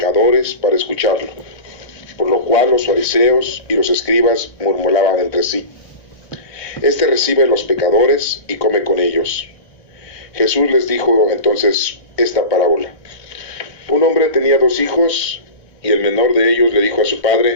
para escucharlo, por lo cual los fariseos y los escribas murmuraban entre sí: Este recibe a los pecadores y come con ellos. Jesús les dijo entonces esta parábola. Un hombre tenía 2 hijos, y el menor de ellos le dijo a su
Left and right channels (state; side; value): late; right; 1.6 ms